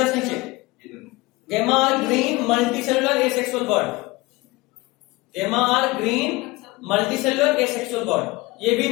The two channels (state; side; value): quieter; right; 22.0 dB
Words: नीचे gemma are green multicellular asexual bud, gemma are green multicellular asexual bud. ये भी